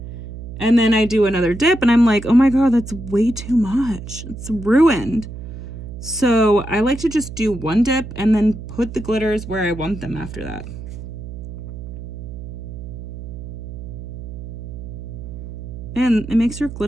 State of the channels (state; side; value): noise; right; hum, 10 dB below the sound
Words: And then I do another dip and I'm like, oh my God, that's way too much. It's ruined. So I like to just do one dip and then put the glitters where I want them after that. And it makes your